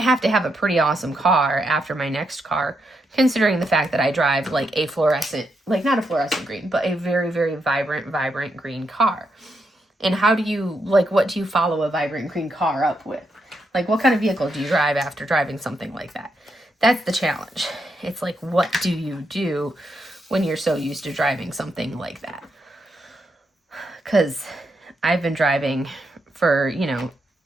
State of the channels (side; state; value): both; normal; correlation 0.81